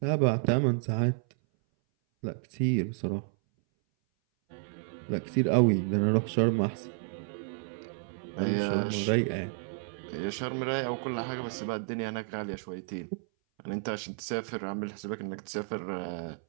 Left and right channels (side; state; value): left; silent; 57 dB below the other